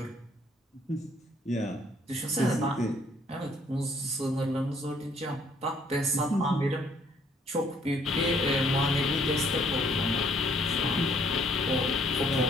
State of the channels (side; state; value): both; normal; correlation 0.64